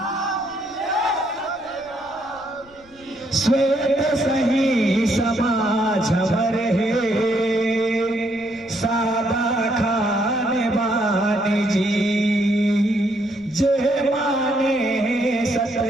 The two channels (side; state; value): left; noise; rumble, 27 dB below the sound